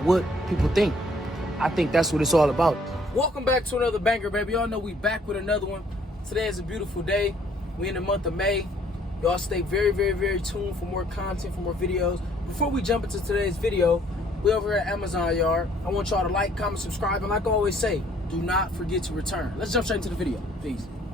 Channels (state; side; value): normal; both; correlation 0.62